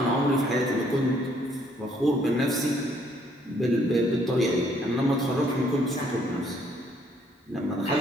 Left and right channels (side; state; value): both; normal; correlation 0.66